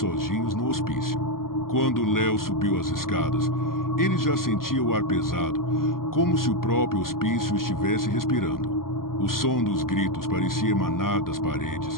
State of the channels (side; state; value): right; late; 0.92 ms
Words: no hospício. Quando Léo subiu as escadas, ele já sentia o ar pesado, como se o próprio hospício estivesse respirando. O som dos gritos parecia emanar das